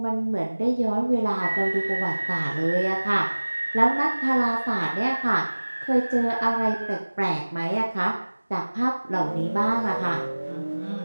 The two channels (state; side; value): inverted; both; correlation -1.00